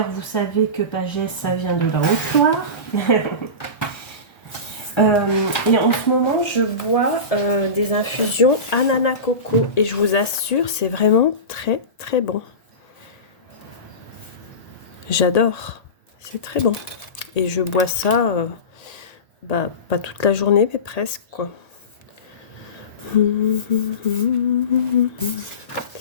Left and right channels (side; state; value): right; late; 1.8 ms